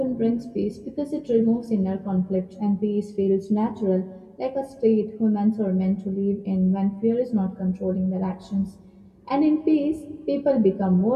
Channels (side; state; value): both; identical; correlation 1.00